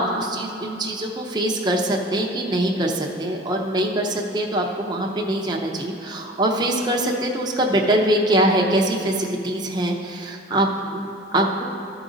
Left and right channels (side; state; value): both; normal; correlation 0.40